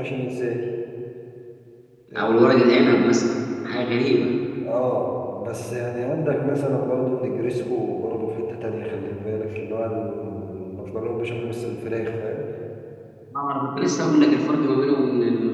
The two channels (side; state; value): both; identical; correlation 1.00